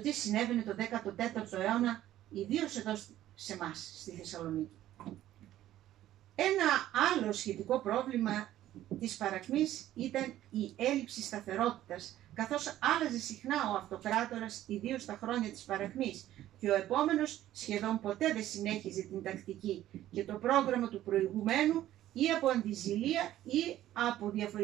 τι συνέβαινε το 14ο αιώνα, ιδίως εδώ σε εμάς, στη Θεσσαλονίκη. Ένα άλλο σχετικό πρόβλημα της παρακμής ήταν η έλλειψη σταθερότητας, καθώς άλλαζε συχνά ο αυτοκράτορας, ιδίως στα χρόνια της παρακμής, και ο επόμενος σχεδόν ποτέ δεν συνέχιζε την τακτική και το πρόγραμμα του προηγουμένου ή από αντιζηλία ή από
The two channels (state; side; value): quieter; left; 13.4 dB